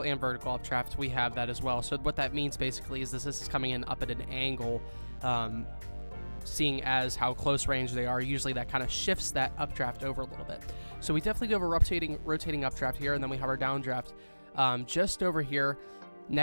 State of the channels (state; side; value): inverted; both; correlation -1.00